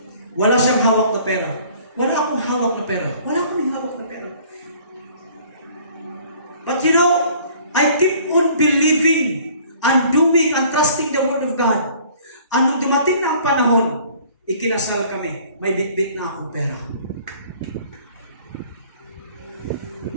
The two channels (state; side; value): inverted; both; correlation -0.54